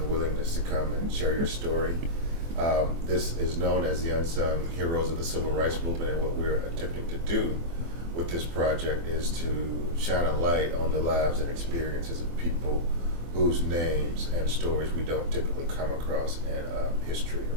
willingness to come and share your story. This is known as the Unsung Heroes of the Civil Rights Movement, and what we're attempting to do with this project is to shine a light on the lives and experiences of people whose names and stories we don't typically come across in a history or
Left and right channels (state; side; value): late; left; 24 ms